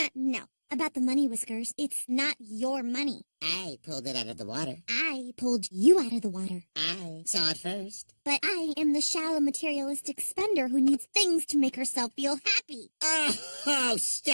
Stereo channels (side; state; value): both; inverted; correlation -1.00